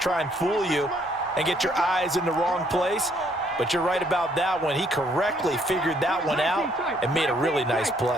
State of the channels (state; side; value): normal; both; correlation 0.67